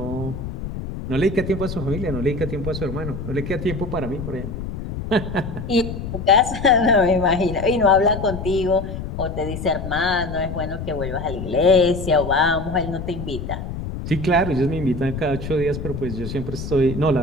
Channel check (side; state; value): left; noise; rumble, 7 dB below the sound